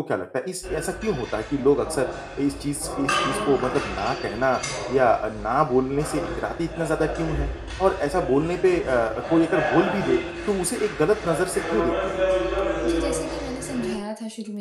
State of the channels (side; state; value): both; identical; correlation 1.00